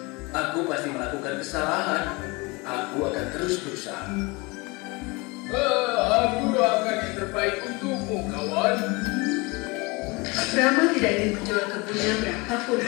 Aku pasti melakukan kesalahan. Aku akan terus berusaha. Aku doakan yang terbaik untukmu, kawan. Rama tidak ingin menjual kebunnya berapapun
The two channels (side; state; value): right; quieter; 26.0 dB